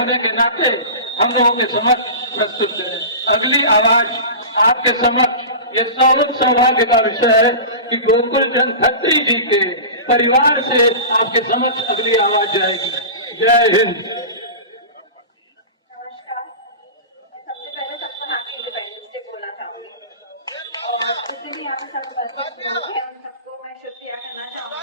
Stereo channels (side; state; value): both; inverted; correlation -0.31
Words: के नाते हम लोगों के समक्ष प्रस्तुत करें। अगली आवाज आपके समक्ष यह सौभाग्य का विषय है कि गोकुल चंद खत्री जी के परिवार से आपके समक्ष अगली आवाज जाएगी। जय हिंद। नमस्कार, मैं सबसे पहले सबको हैप्पी इंडिपेंडेंस डे बोलना चाहूंगी और जितने भी यहाँ पे सब उपस्थित लोग हैं उन सबको मैं शुक्रिया करना